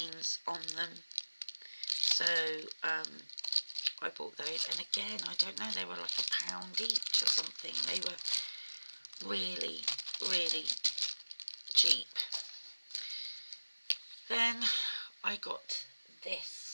on them. So I bought those, and again, I don't know, they were like £1 each or something. They were really, really cheap. Then I got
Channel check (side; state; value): both; inverted; correlation -1.00